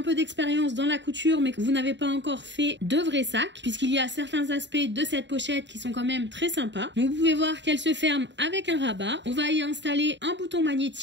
peu d'expérience dans la couture mais que vous n'avez pas encore fait de vrais sacs, puisqu'il y a certains aspects de cette pochette qui sont quand même très sympas. Donc vous pouvez voir qu'elle se ferme avec un rabat. On va y installer un bouton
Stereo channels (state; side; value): late; left; 0.52 ms